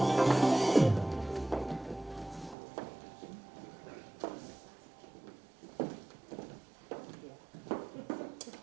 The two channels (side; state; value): left; drops out; at 2.6 s